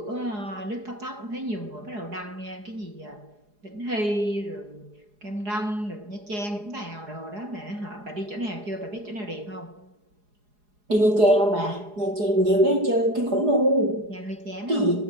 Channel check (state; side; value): late; left; 4.8 ms